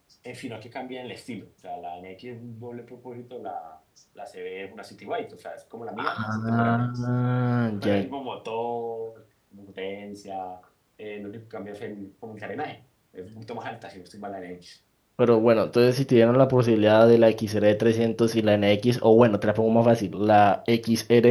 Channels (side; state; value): both; identical; correlation 1.00